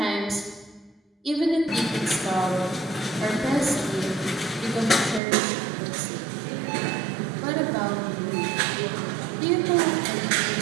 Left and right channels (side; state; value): left; drops out; at 5.2 s